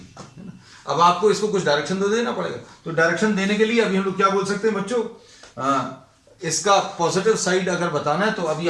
है ना। अब आपको इसको कुछ डायरेक्शन तो देना पड़ेगा, तो डायरेक्शन देने के लिए अभी हम लोग क्या बोल सकते हैं बच्चों, इसका पॉजिटिव साइड अगर बताना है तो अभी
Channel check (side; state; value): both; identical; correlation 1.00